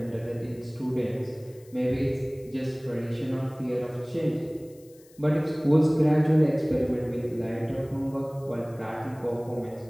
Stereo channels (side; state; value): left; noise; hiss, 27 dB below the sound